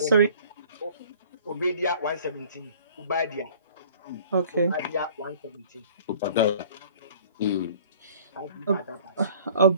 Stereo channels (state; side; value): inverted; both; correlation -0.50